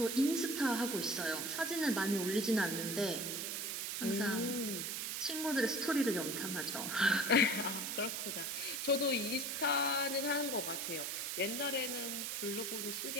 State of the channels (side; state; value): right; noise; hiss, 2 dB below the sound